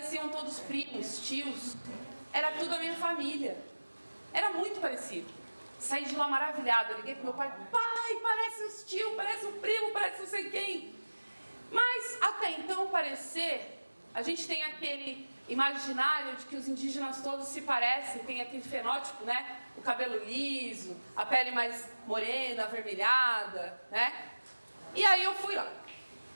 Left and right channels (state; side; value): inverted; both; correlation -1.00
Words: todos primos, tios. Era tudo a minha família. Era muito parecido. Saí de lá maravilhada, liguei pro meu pai, pai, parece os tios, parece um primo, parece não sei quem. Mas até então parecer A gente tem aquele imaginário de que os indígenas todos se parecem, tem aquele fenótipo, né? O cabelo liso, a pele mais morena, avermelhada, né? E aí eu fui lá.